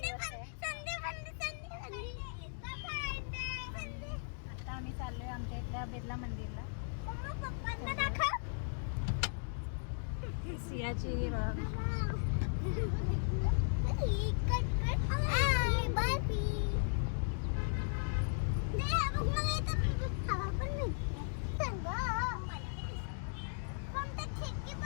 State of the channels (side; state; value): right; silent; digital silence